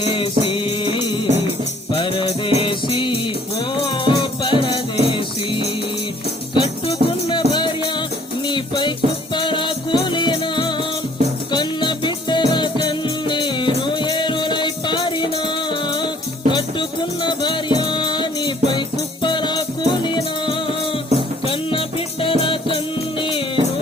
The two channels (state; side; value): normal; both; correlation 0.58